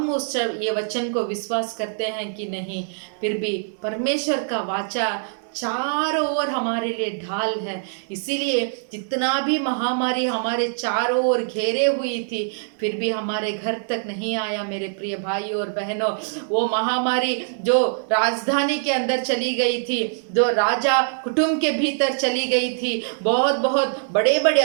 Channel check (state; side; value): silent; left; digital silence